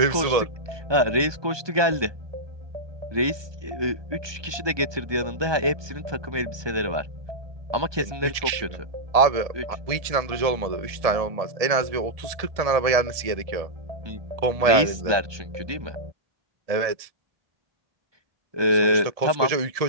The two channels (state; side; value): late; left; 1.2 ms